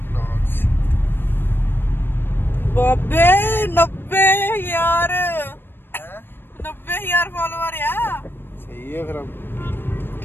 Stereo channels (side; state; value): right; late; 0.099 ms